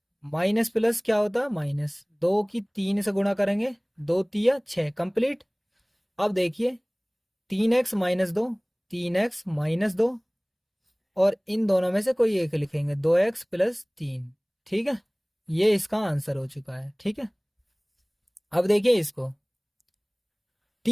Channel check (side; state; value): both; identical; correlation 1.00